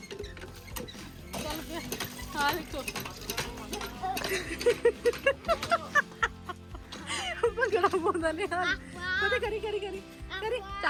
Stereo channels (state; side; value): identical; both; correlation 1.00